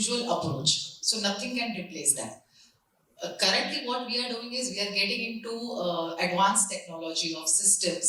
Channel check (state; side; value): identical; both; correlation 1.00